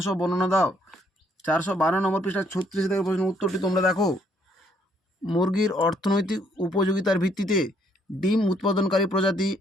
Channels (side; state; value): both; normal; correlation 0.68